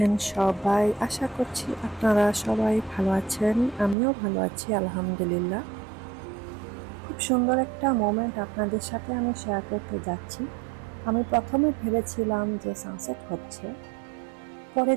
সবাই? আশা করছি আপনারা সবাই ভালো আছেন। আমিও ভালো আছি আলহামদুলিল্লাহ। খুব সুন্দর একটা মোমেন্ট আপনাদের সাথে আমি শেয়ার করতে যাচ্ছি। আমি প্রথমে ভেবেছিলাম যে সানসেট হচ্ছে, পরে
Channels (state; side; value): drops out; left; at 4.0 s